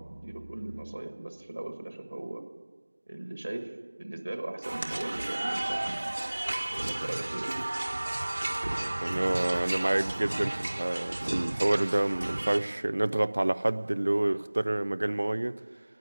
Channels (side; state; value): both; inverted; correlation -1.00